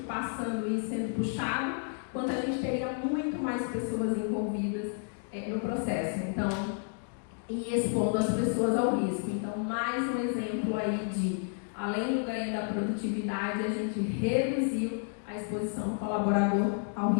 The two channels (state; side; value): silent; right; 57 dB below the other